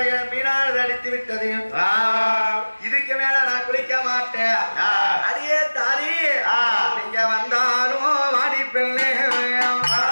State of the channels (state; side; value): inverted; both; correlation -1.00